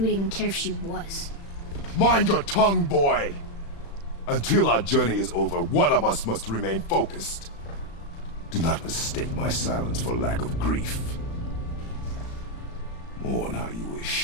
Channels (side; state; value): right; late; 35 ms